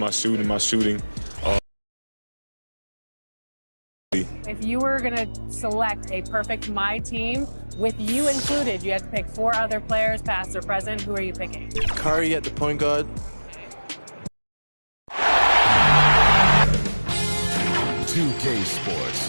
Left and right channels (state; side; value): inverted; both; correlation -1.00